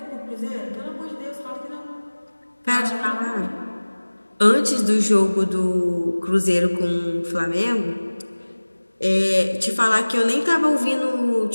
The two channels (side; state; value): both; inverted; correlation -1.00